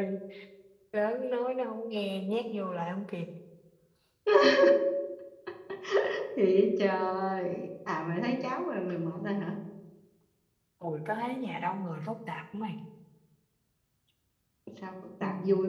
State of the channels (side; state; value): both; identical; correlation 1.00